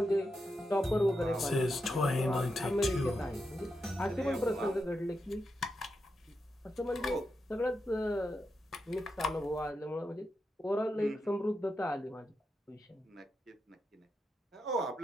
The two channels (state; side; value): normal; both; correlation 0.86